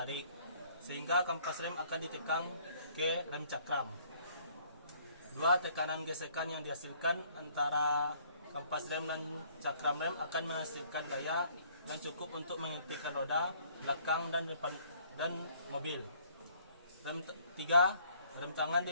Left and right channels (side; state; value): both; inverted; correlation -0.61